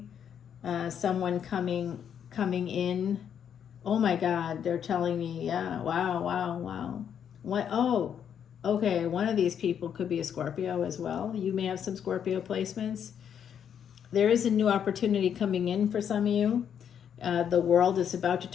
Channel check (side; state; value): right; quieter; 8.5 dB